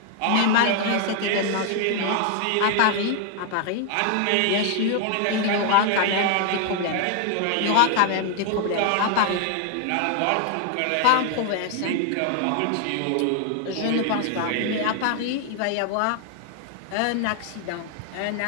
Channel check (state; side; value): different; both; correlation 0.00